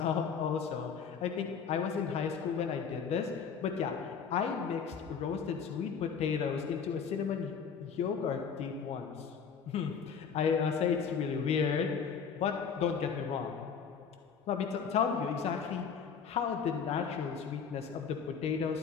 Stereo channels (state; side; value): quieter; right; 6.5 dB